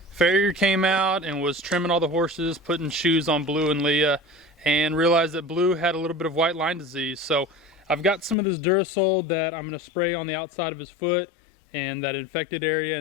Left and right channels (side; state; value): right; drops out; at 8.3 s